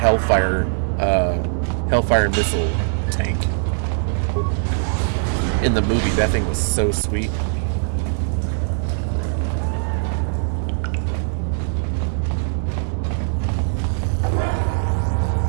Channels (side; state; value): left; silent; digital silence